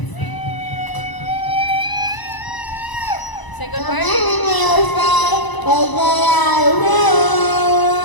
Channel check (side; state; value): right; late; 1.0 ms